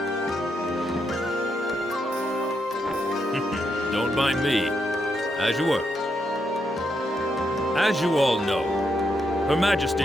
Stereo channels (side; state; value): both; normal; correlation 0.81